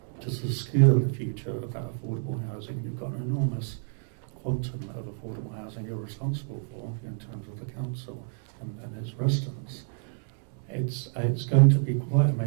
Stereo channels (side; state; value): left; silent; digital silence